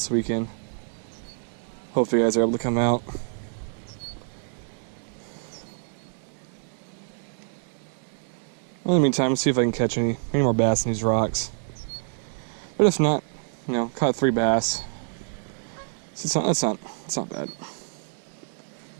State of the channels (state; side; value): silent; left; digital silence